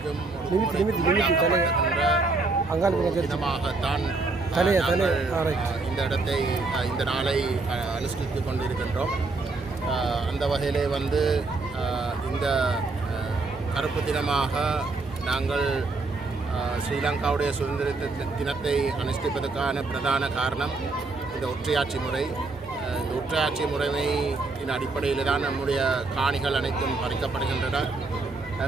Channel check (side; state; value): left; quieter; 3.6 dB